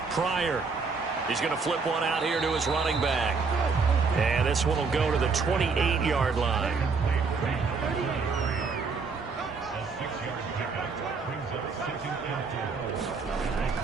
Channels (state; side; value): quieter; left; 4.7 dB